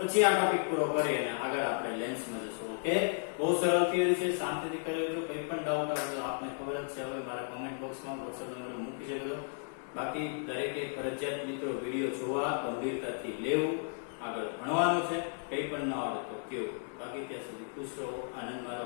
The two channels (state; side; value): silent; right; 55 dB below the other